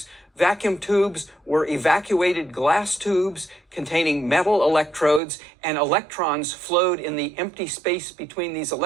Vacuum tubes were evacuated glass tubes containing metal electrodes, and electrons flowed in the empty space between these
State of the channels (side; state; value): left; drops out; at 5.2 s